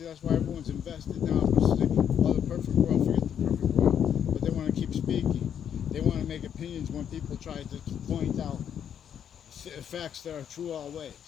that's why everyone's invested now. Oh, the perfect world, forget the perfect world. But they want to keep speaking. They want to make opinions when people try to point out facts that are true always,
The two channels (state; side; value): quieter; right; 8.8 dB